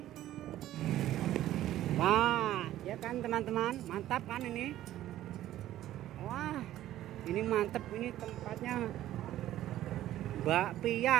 Wah, ya kan teman-teman, mantap kan ini. Wah, ini mantap, ini tempatnya Mbak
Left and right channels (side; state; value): left; quieter; 13.5 dB